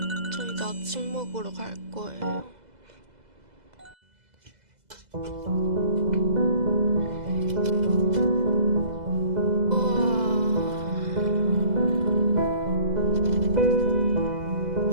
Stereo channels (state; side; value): late; left; 2.0 ms